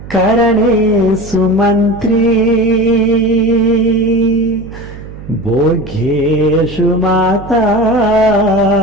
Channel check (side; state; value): right; noise; hum, 14 dB below the sound